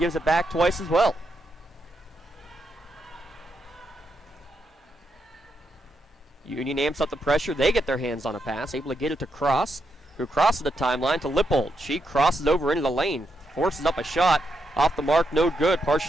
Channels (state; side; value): normal; both; correlation 0.82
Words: it back twice as well. Union amps up the pressure. They get their hands on a pass, able to get it to Cross, who crosses the timeline to Lippold. She crosses over into the lane, forces up a shot. Off the mark, no good.